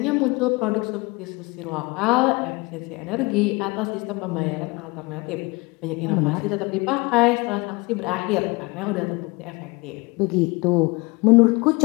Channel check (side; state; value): right; quieter; 25.5 dB